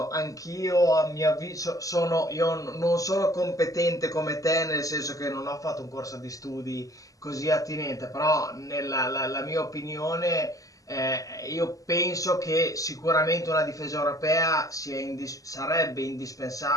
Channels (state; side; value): late; right; 0.17 ms